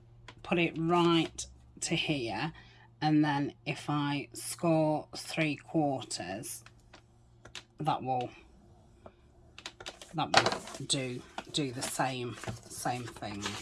put it right to here, and then if I score 3/4, that will do the same thing.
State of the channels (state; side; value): identical; both; correlation 1.00